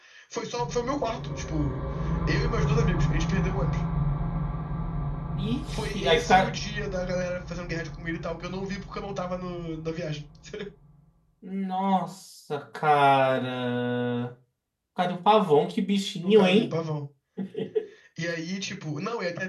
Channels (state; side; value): identical; both; correlation 1.00